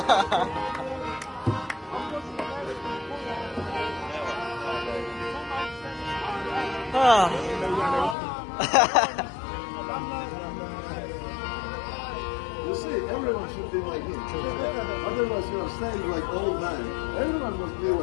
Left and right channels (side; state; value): right; drops out; at 8.2 s